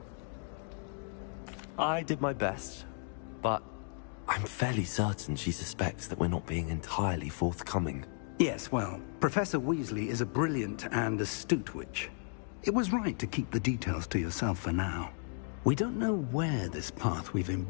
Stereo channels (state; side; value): silent; right; 55 dB below the other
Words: I did my best, but I'm fairly certain she suspects that we're not being entirely forthcoming. Yes, well, Professor Weasley is a brilliant and astute witch. It was right to keep the details to yourself for now. We don't know where this path we've